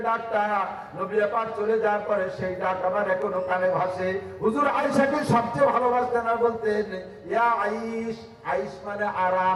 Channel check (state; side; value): identical; both; correlation 1.00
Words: ডাকটা নবী পাক চলে যাওয়ার পরে সেই ডাক আমার এখনো কানে ভাসে। হুজুর আয়েশাকে সবচেয়ে ভালোবাসতেন আর বলতেন ইয়া আইশ। আইশ মানে